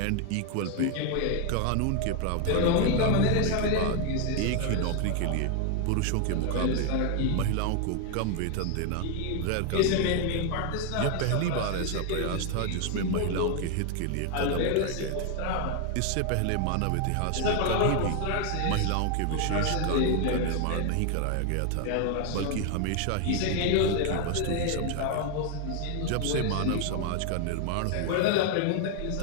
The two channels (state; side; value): different; both; correlation 0.01